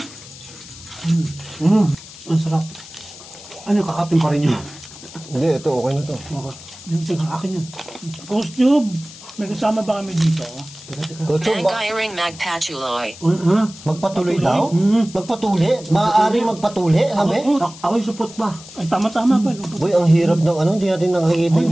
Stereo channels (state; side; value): noise; left; hiss, 17 dB below the sound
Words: Ang sarap. Ano, kakapin pa rin yun? Hindi, ito okay na to. Ito, akin yan. Ghost Tube. May kasama ba kami dito? Bangiring magpatuloy. Magpatuloy daw? Magpatuli? Maaaring magpatuli, sabi? Ako yung support ba? Ay, tama ba? Boy, ang hirap ng ano, hindi natin nakakita